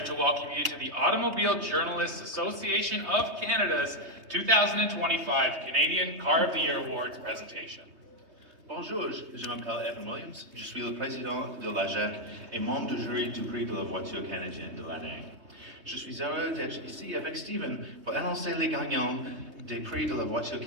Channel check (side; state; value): left; late; 3.2 ms